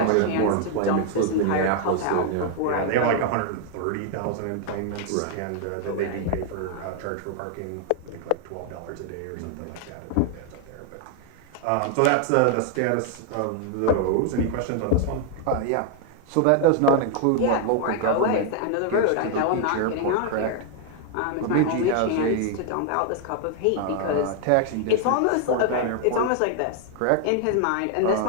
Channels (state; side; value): different; both; correlation 0.00